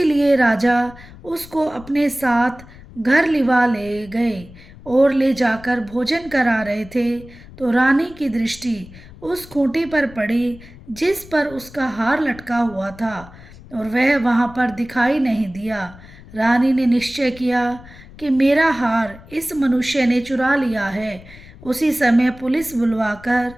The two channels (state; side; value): noise; left; rumble, 19 dB below the sound